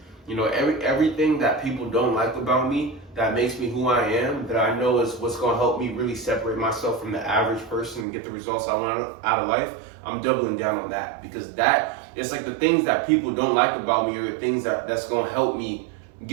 You know, everything that people don't like about me, that makes me who I am, that I know is what's going to help me really separate myself from the average person and get the results I want out of life, I'm doubling down on that. Because it's like the things that people don't like about me are the things that's going to help me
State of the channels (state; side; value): drops out; left; at 8.1 s